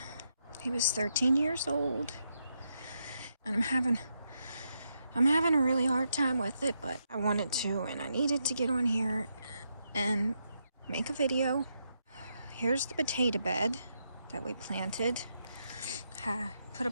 he was 13 years old, and I'm having a really hard time with it, but I wanted to, and I needed to get on here and make a video. Here's the potato bed that we planted. Put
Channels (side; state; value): both; inverted; correlation -0.81